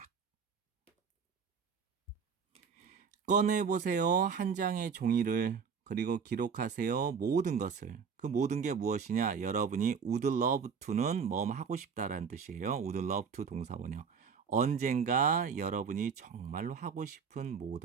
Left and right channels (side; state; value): left; quieter; 6.2 dB